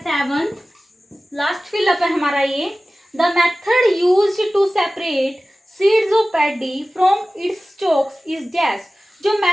लास्ट फिलअप है हमारा ये, the method used to separate seeds of paddy from its stalks is dash. जो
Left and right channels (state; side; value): normal; both; correlation 0.97